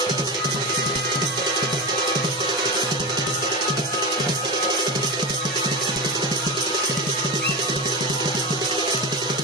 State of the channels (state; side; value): normal; both; correlation 0.21